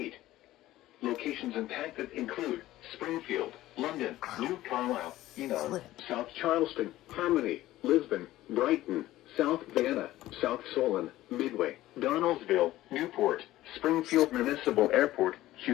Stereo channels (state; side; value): quieter; right; 15.6 dB